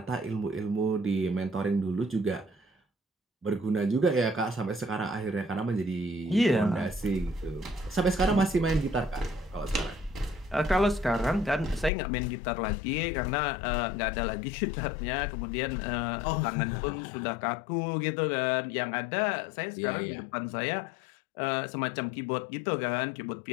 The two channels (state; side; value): drops out; right; at 11.9 s